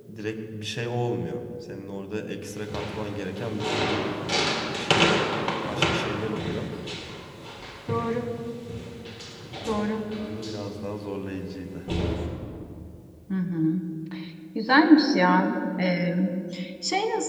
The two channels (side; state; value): both; identical; correlation 1.00